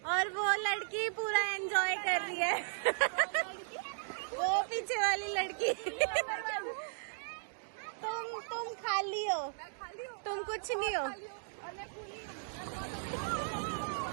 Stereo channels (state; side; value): silent; left; digital silence